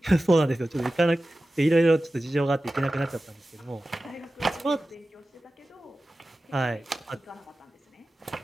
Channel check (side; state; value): both; normal; correlation 0.95